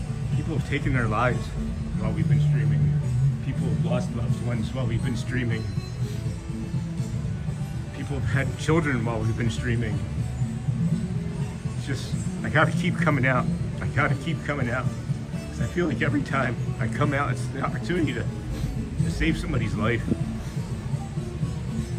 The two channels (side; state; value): both; identical; correlation 1.00